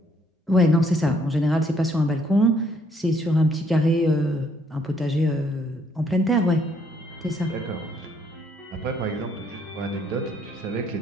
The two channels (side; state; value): both; normal; correlation 0.68